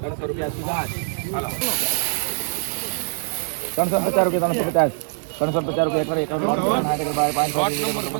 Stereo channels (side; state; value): left; silent; 58 dB below the other